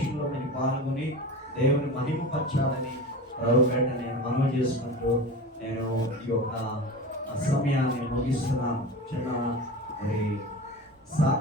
మీరు పాల్గొని దేవుని మహిమపరచాలని ప్రభుపేట నేను మనవి చేసుకుంటూ నేను ఈ యొక్క సమయాన్ని ముగిస్తున్నాను. చిన్న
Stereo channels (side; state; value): both; normal; correlation 0.31